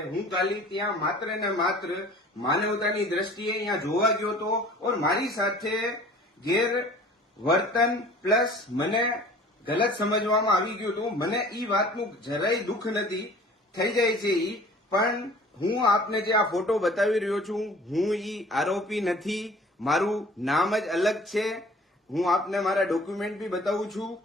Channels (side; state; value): both; normal; correlation 0.48